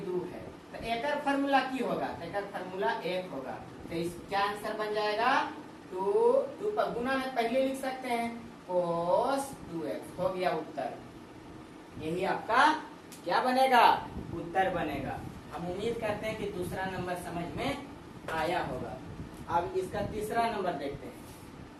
2 है, तो एक फॉर्मूला की होगा? तो एक फॉर्मूला 1 होगा। तो इस क्या आंसर बन जाएगा? 2 पर गुना में पहले लिख सकते हैं cos 2x। हो गया उत्तर। यही आपका क्या बनेगा? उत्तर बनेगा। हम उम्मीद करते हैं कि दूसरा नंबर समझ में आया होगा। अब इसका तीसरा नंबर देखते हैं।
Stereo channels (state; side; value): identical; both; correlation 1.00